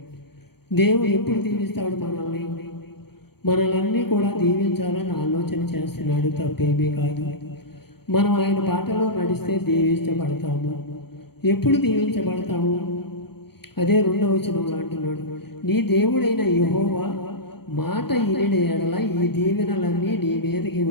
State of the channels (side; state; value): right; late; 0.96 ms